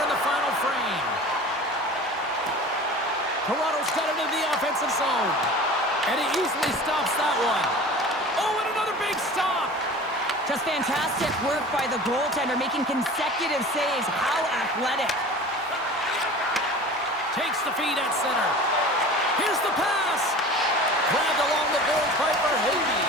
in the final frame. Toronto's got it into the offensive zone. And he easily stops that one. Oh, and another big stop. Just fantastic work by the goaltender, making consecutive saves. How athletic. Takes the feed at center. Here's the pass. Grabbed along the board by Verhage.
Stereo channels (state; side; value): normal; both; correlation 0.39